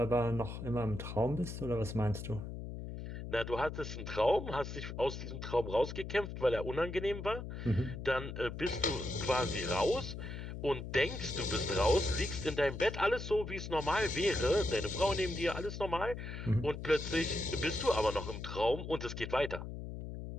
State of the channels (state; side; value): noise; left; hum, 8 dB below the sound